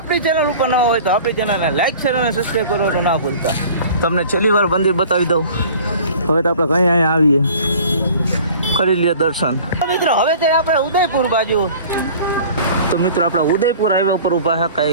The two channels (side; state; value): both; inverted; correlation -0.45